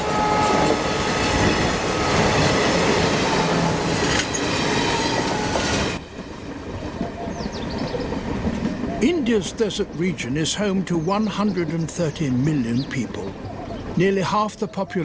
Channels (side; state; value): both; identical; correlation 1.00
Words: India's desert region is home to 130 million people, nearly half the